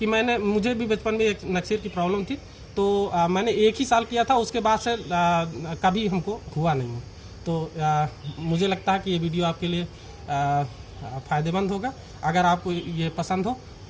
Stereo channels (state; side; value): identical; both; correlation 1.00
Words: मुझे भी बचपन में एक नक्सीर की प्रॉब्लम थी, तो मैंने 1 ही साल किया था, उसके बाद से कभी हमको हुआ नहीं। तो मुझे लगता है कि ये वीडियो आपके लिए फ़ायदेमंद होगा। अगर आपको ये पसंद हो